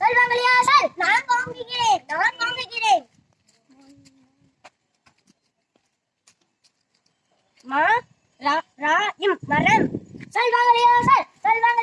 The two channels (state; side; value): identical; both; correlation 1.00